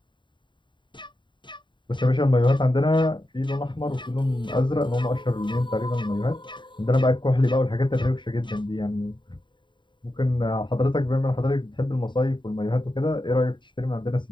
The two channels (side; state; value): right; late; 0.23 ms